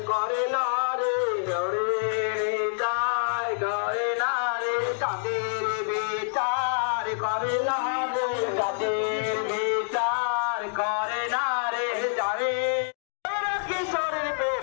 করে না রে যায় গায়ে না রে তাদের বিচার করে না রে তাদের বিচার করে না রে যারে কিশোরের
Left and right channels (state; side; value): silent; right; digital silence